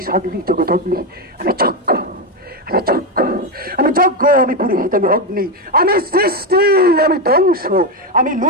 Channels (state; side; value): normal; both; correlation 0.08